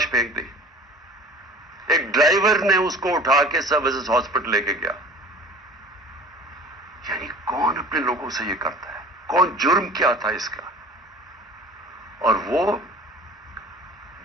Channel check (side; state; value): both; normal; correlation 0.43